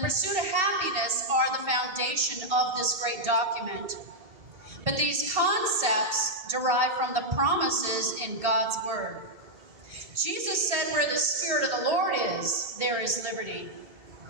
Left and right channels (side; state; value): left; late; 2.7 ms